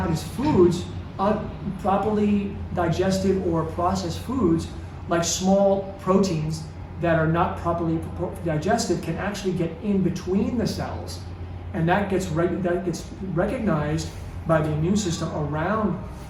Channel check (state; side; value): identical; both; correlation 1.00